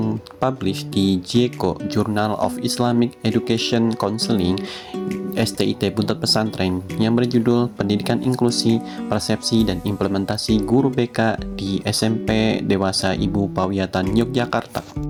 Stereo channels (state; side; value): identical; both; correlation 1.00